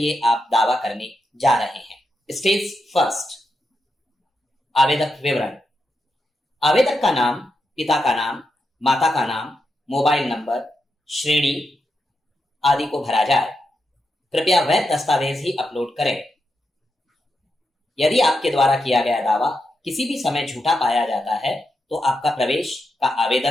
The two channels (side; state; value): both; normal; correlation 0.86